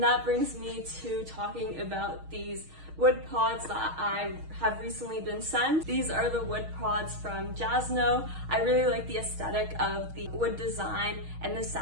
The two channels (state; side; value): late; left; 6.4 ms